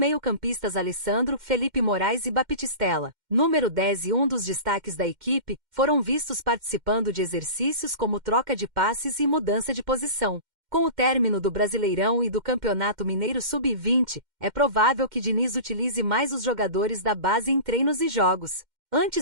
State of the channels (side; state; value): left; late; 2.1 ms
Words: Alessandro, Felipe Moraes e Baptistella, número 10 e um dos destaques da equipe, foram vistos participando de exercícios como troca de passes e mudança de posição. Com o término do Brasileirão e do Campeonato Mineiro Sub-20, é provável que Diniz utilize mais os jogadores da base em treinos e jogos.